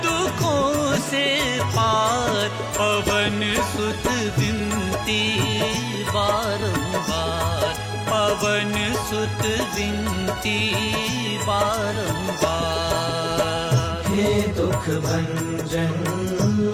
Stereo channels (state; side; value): identical; both; correlation 1.00